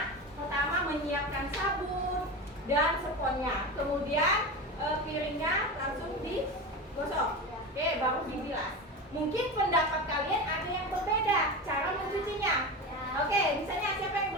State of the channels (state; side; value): normal; both; correlation 0.24